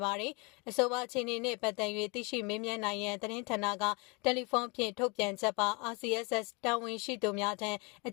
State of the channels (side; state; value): right; quieter; 30.0 dB